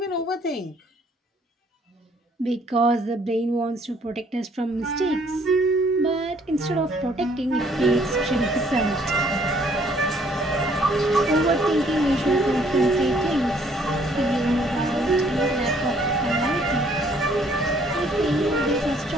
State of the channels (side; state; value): both; normal; correlation 0.62